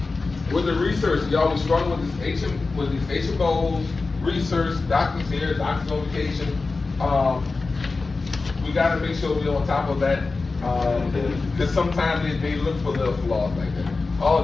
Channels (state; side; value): quieter; right; 3.9 dB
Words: With the research, y'all was struggling with these HMOs, research, doctors here, doctors on vacation. We gotta make sure we're on top of that, cause sometimes they look for little flaws like that. Oh,